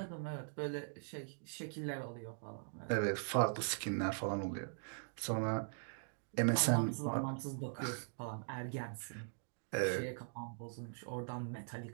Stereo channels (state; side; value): silent; left; digital silence